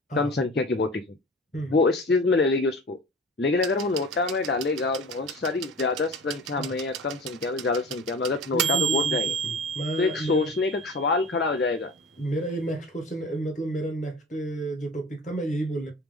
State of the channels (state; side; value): normal; both; correlation 0.38